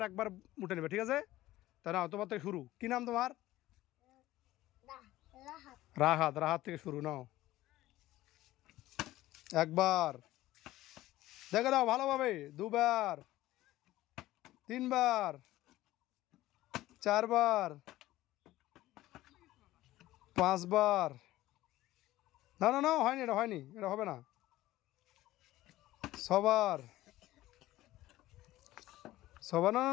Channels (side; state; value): right; quieter; 16.0 dB